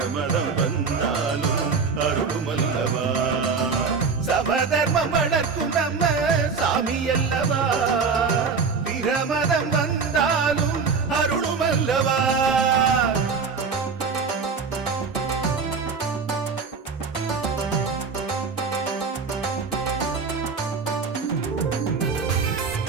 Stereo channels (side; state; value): left; quieter; 5.2 dB